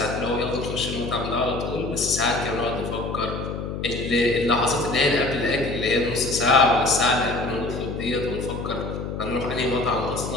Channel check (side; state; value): left; noise; hum, 5 dB below the sound